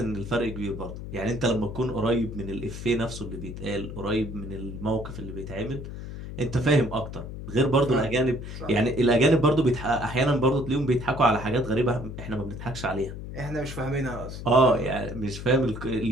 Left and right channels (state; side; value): noise; left; hum, 9 dB below the sound